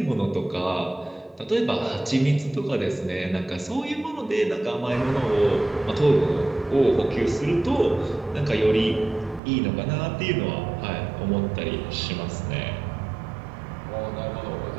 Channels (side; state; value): left; drops out; at 9.4 s